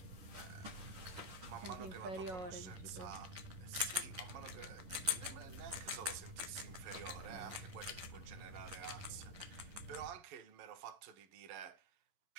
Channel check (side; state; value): left; late; 11 ms